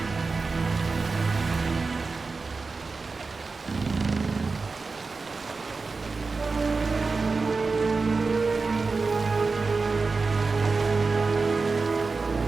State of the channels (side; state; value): left; quieter; 4.1 dB